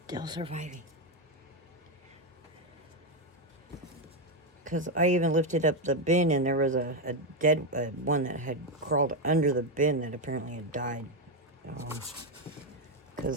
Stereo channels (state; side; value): normal; both; correlation 0.06